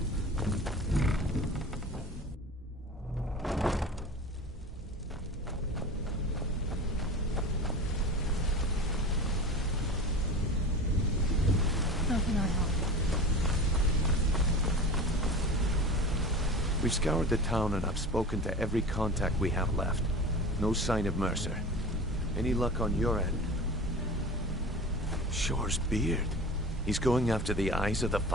How can I help? We've scoured the town and I've spoken to every contact we have left. No sign of Mercer. Any luck on your end? Shore's beard. He's going after the eyes of the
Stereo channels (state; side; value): normal; both; correlation 0.34